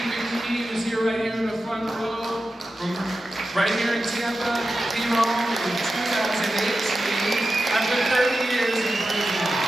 McKee, who's here right here in the front row, from right here in Tampa, came home in 2018 after 30 years in prison.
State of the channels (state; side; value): normal; both; correlation 0.92